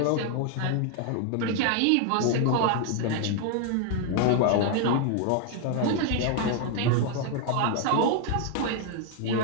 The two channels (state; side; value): different; both; correlation 0.00